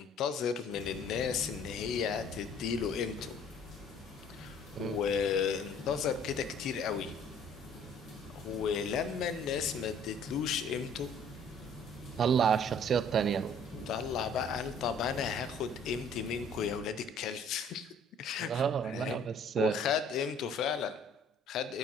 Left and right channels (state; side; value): normal; both; correlation 0.55